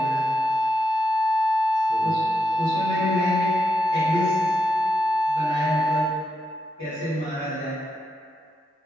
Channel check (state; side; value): normal; both; correlation 0.84